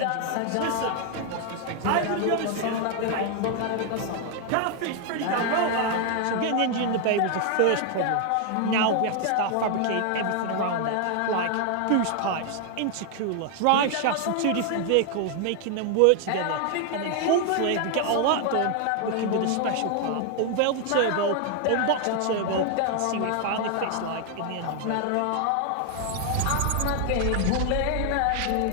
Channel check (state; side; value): different; both; correlation 0.00